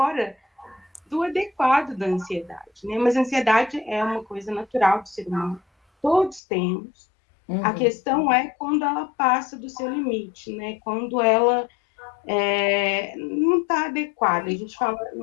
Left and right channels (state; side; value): drops out; right; at 6.4 s